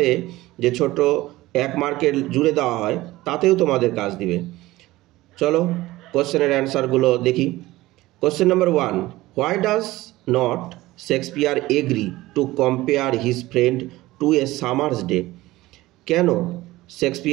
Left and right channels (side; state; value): left; quieter; 18.0 dB